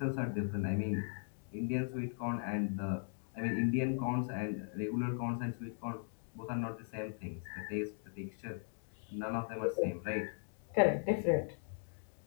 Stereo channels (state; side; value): silent; right; digital silence